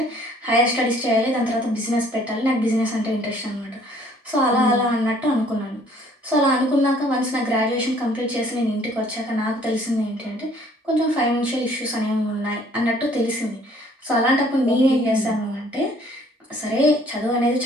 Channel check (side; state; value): both; normal; correlation 0.58